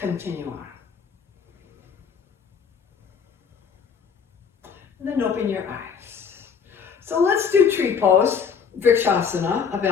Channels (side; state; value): right; quieter; 6.5 dB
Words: on. And then open your eyes. So let's do tree pose, Vrikshasana, a